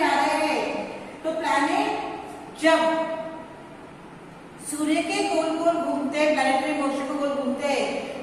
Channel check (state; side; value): identical; both; correlation 1.00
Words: रहे हैं। तो प्लैनेट जब सूर्य के गोल गोल घूमते हैं, प्लैनेटरी मोशन को गोल घूमते हैं,